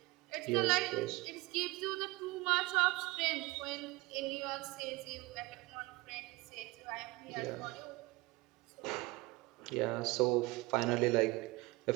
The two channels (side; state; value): left; quieter; 22.1 dB